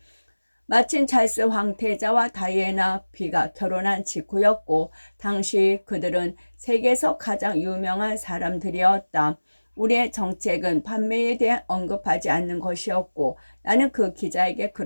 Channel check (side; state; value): both; inverted; correlation -1.00